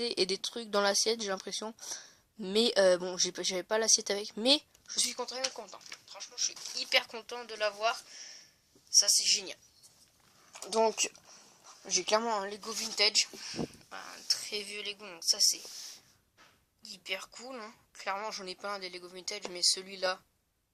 et des trucs dans l'assiette, j'ai l'impression. Mais bon, j'avais pas l'assiette avec, mais je suis très content. franchement je suis hyper content de l'avoir. Ça c'est génial. Donc j'ai clairement un Lego vintage, un très vieux Lego, donc ça c'est hyper cool. Hein. Clairement j'en ai pas un des Lego vintage, mais celui-là,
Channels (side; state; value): both; identical; correlation 1.00